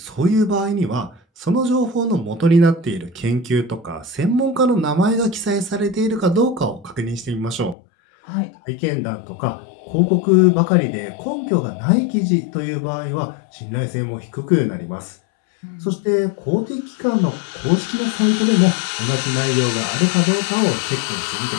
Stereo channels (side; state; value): right; drops out; at 7.8 s